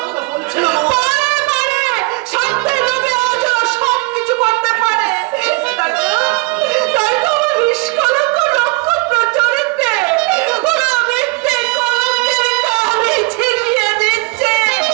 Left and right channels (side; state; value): left; quieter; 27.3 dB